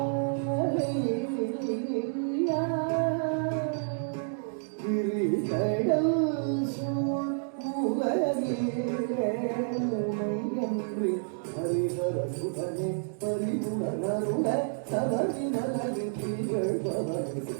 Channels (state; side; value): silent; left; digital silence